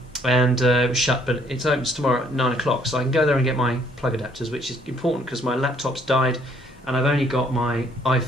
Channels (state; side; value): normal; both; correlation 0.65